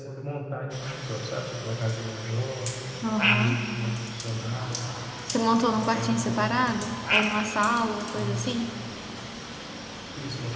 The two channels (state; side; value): identical; both; correlation 1.00